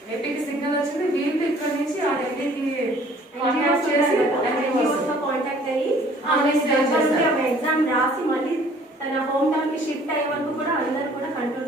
ఏపీకి సిగ్నల్ వచ్చింది. వీళ్ళు ఇక్కడ నుంచి ఆ ఢిల్లీకి కాంటాక్ట్ చేసి కాంటాక్ట్ అయ్యి ఎగ్జామ్ రాసి మళ్ళీ తన హోమ్ టౌన్ కి షిఫ్ట్ అయ్యే వరకు కూడా అందరూ కూడా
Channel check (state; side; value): normal; both; correlation 0.55